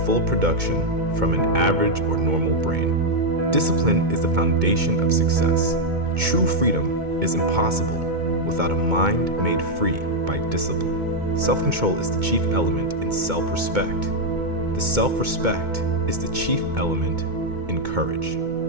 full production from an average or normal brain. Discipline is the foundation of success. True freedom is impossible without a mind made free by discipline. Self-control is the chief element in self-respect. The self-respect is the chief element in courage.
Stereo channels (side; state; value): left; late; 2.2 ms